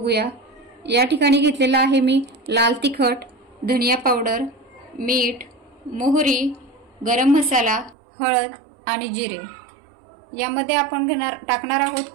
या ठिकाणी घेतलेला आहे मी लाल तिखट, धनिया पावडर, मीठ, मोहरी, गरम मसाला, हळद आणि जिरे। यामध्ये आपण टाकणार आहोत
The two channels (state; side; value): drops out; left; at 8.0 s